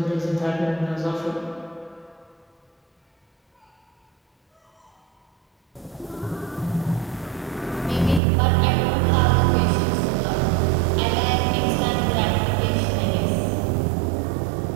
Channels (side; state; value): left; drops out; at 8.2 s